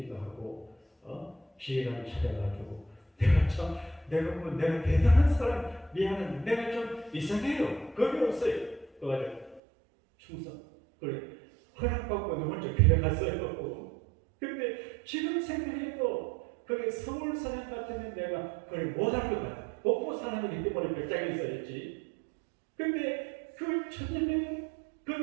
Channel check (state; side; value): drops out; left; at 9.6 s